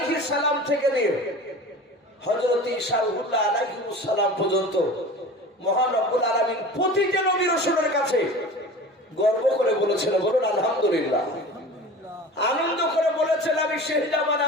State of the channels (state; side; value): normal; both; correlation 0.37